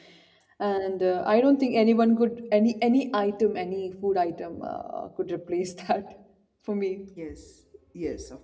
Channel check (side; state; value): both; identical; correlation 1.00